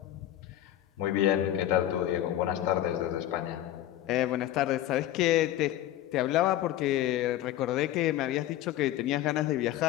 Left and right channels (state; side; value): quieter; right; 13.1 dB